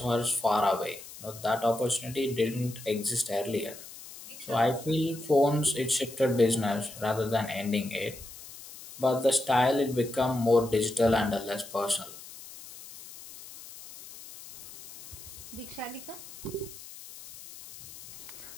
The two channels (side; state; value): left; noise; hiss, 15 dB below the sound